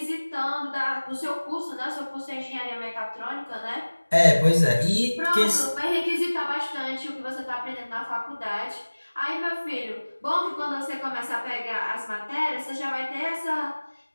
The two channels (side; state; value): both; inverted; correlation -1.00